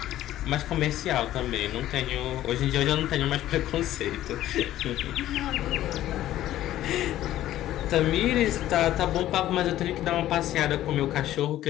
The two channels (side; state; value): right; quieter; 13.6 dB